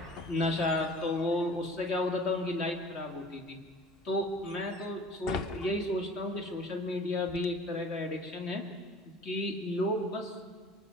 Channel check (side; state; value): both; normal; correlation 0.46